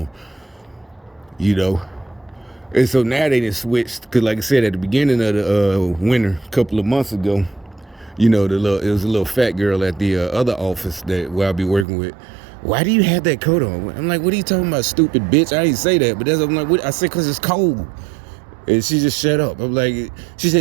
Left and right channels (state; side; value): drops out; left; at 11.9 s